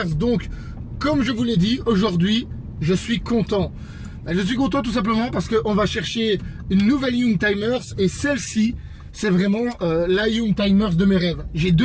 Donc, comme je vous l'ai dit, aujourd'hui, je suis content. Je suis content tout simplement parce qu'on va chercher une nouvelle Youngtimers et celle-ci, c'est vraiment la Youngtimers de mes rêves. J'ai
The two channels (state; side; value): identical; both; correlation 1.00